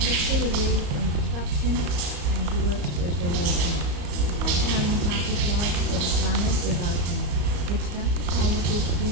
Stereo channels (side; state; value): left; late; 35 ms